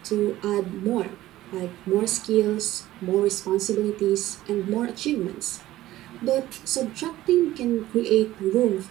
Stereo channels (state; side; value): quieter; left; 15.4 dB